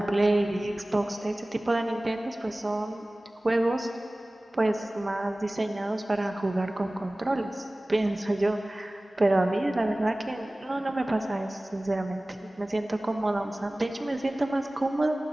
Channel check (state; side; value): normal; both; correlation 0.98